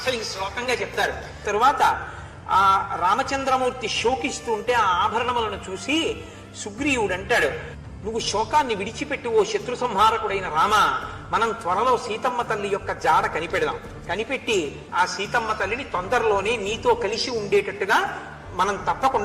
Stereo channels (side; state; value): both; identical; correlation 1.00